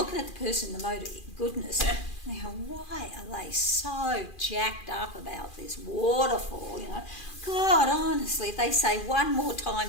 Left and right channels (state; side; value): late; right; 2.4 ms